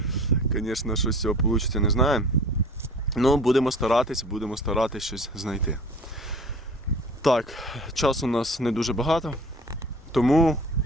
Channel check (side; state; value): both; normal; correlation 0.44